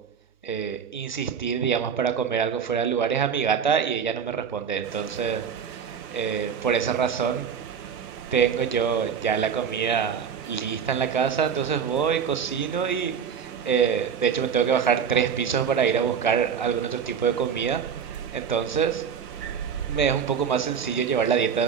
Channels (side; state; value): left; quieter; 7.1 dB